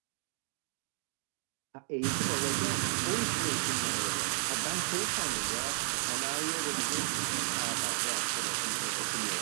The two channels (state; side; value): silent; left; digital silence